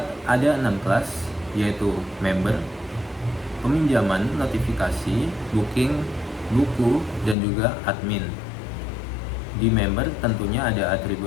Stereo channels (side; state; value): right; drops out; at 7.4 s